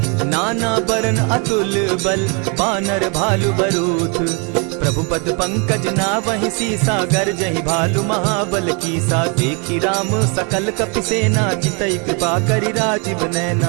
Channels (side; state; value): left; quieter; 34.6 dB